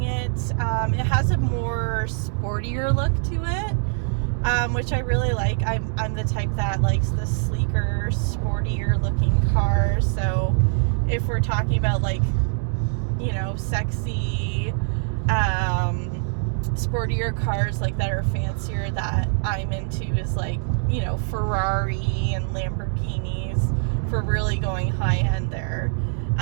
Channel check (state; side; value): silent; left; 63 dB below the other